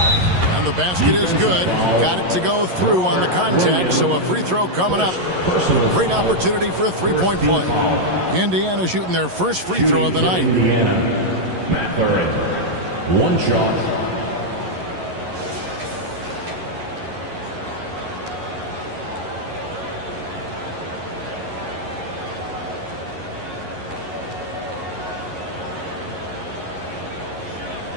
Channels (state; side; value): late; left; 11 ms